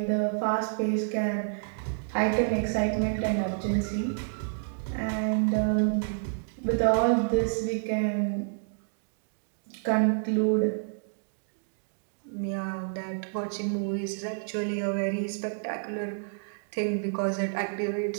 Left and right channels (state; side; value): silent; left; digital silence